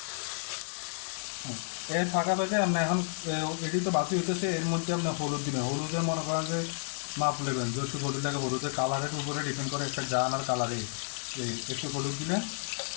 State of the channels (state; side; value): silent; right; digital silence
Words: এর ফাঁকা ফাঁকে আপনি এখন এটি তো বাকি হইতেছে, এর মধ্যে আপনি হলুদ দিবেন। হলুদের মনে করেন যে মাপ নেবেন, যেহেতু হলুদটাকে হলুদের কালারের উপরে ডিপেন্ড করে একটা জান আর কালারে। এই একটু হলুদ দিলেন,